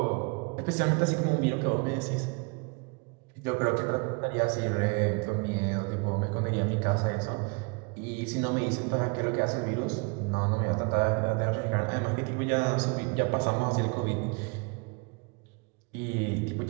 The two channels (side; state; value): left; quieter; 31.3 dB